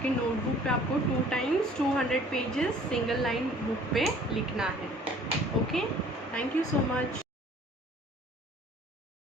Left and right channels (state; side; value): normal; both; correlation 0.53